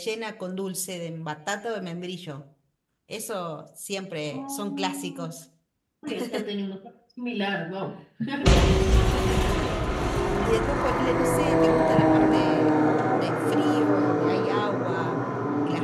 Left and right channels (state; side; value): identical; both; correlation 1.00